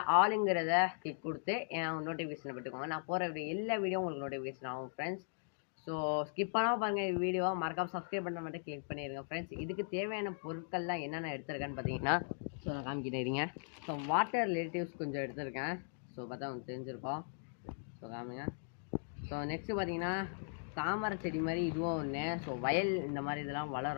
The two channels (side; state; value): right; silent; digital silence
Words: ஆளுங்கிறத கிளிக் கொடுத்து என் நோட்டிஃபிகேஷனை பெற்றுக்கோங்க. நான் போகிற எல்லா வீடியோ உங்களுக்கு நோட்டிஃபிகேஷன் ஆகும் ஃப்ரெண்ட்ஸ். ஸோ ஸ்கிப் பண்ணாமல் பாருங்கள் வீடியோவை மறக்காமல் சப்ஸ்கிரைப் பண்ண மட்டும் கிளிக் பண்ணிடுங்க ஃப்ரெண்ட்ஸ். இதுக்கு தேவையான பொருட்கள்லாம் என்னென்ன எடுத்திருக்கேன்னு பார்த்தீங்கன்னா, ஸோ நான் காமிக்கிட்டேங்க. ஸோ வாட்டர் ரிலேட்டிவ்ஸ் கொஞ்சம் எடுத்திருக்கேன். ஸோ பார்த்தா உங்களுக்கு தெரிஞ்சிருக்கோம். ஸோ காமிங்க. ஸோ நெக்ஸ்ட்டு பார்த்தீங்கன்னா தாமரை செடி மாதிரி இதுவும் ஒன்று. ஸோ வயல் இந்த மாதிரி இதெல்லாம்